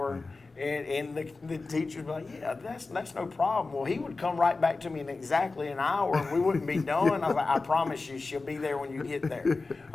And the teachers would be like, yeah, that's no problem. Well, he would come right back to me in exactly an hour, and we wouldn't be done. I was like, I promise you, she'll be there when you get there.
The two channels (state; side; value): quieter; right; 3.7 dB